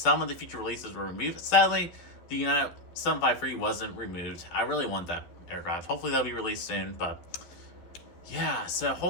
of the future releases were removed. Sadly, the United 753 wasn't removed. I really want that aircraft. Hopefully that'll be released soon, but yeah, so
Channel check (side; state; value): right; late; 11 ms